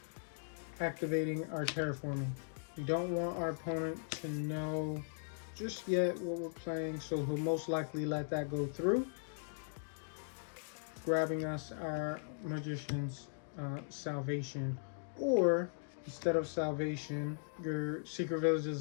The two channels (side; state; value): right; silent; digital silence